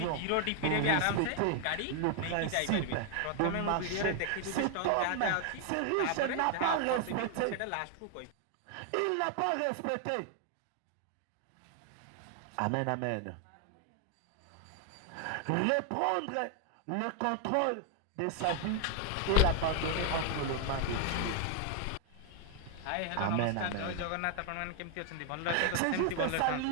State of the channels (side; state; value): both; different; correlation 0.00